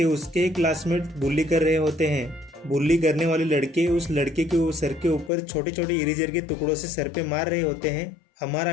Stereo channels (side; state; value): right; drops out; at 5.3 s